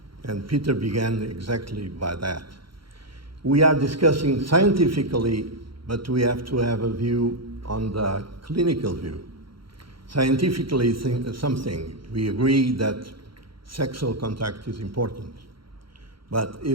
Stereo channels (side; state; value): left; late; 0.74 ms